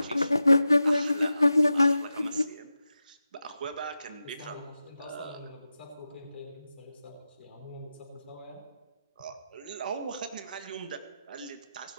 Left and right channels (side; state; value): both; inverted; correlation -0.92